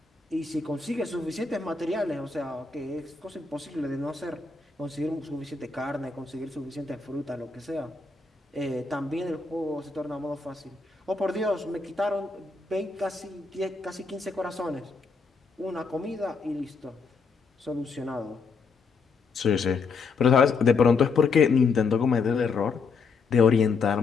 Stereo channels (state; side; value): quieter; right; 4.7 dB